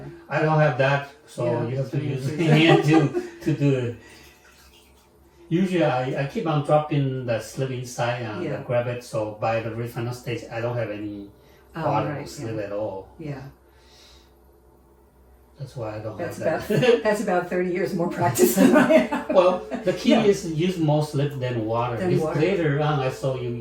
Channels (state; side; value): identical; both; correlation 1.00